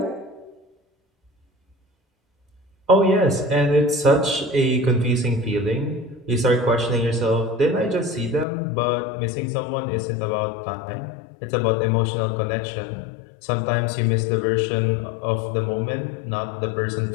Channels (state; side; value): drops out; right; at 8.5 s